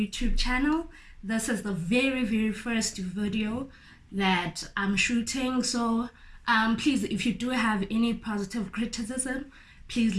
channel. This is the very first video that I'm shooting, so please, if you do have any positive criticism, please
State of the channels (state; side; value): identical; both; correlation 1.00